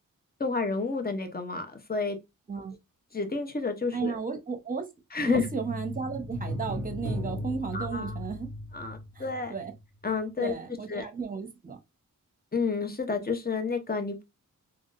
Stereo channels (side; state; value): both; normal; correlation 0.43